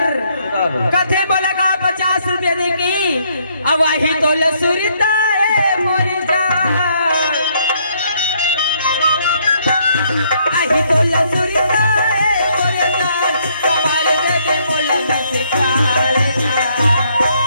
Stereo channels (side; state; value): both; inverted; correlation -0.69